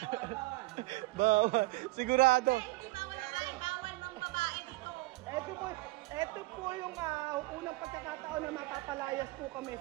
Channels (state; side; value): quieter; left; 21.7 dB